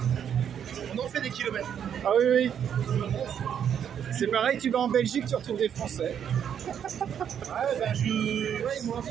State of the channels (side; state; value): left; quieter; 8.6 dB